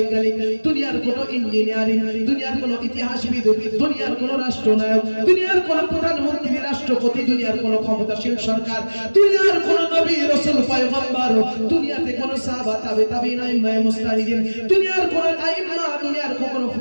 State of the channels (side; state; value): both; inverted; correlation -1.00